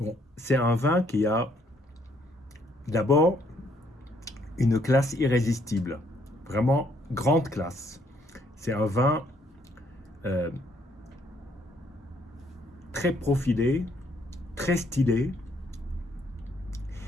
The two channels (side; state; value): both; normal; correlation 0.68